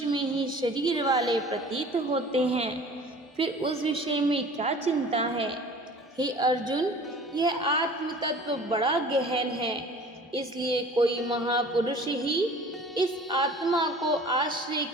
में ही शरीर वाले प्रतीत होते हैं, फिर उस विषय में क्या चिंता है। हे अर्जुन, यह आत्म तत्व बड़ा गहन है, इसलिए कोई महापुरुष ही इस आत्मा को आश्रय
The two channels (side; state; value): both; normal; correlation 0.45